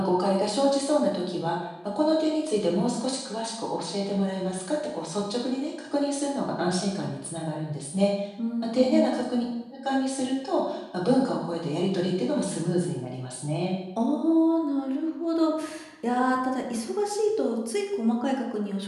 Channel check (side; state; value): both; identical; correlation 1.00